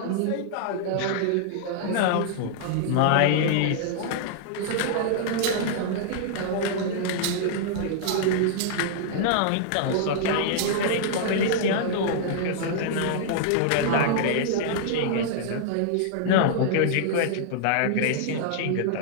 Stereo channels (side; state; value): both; different; correlation -0.01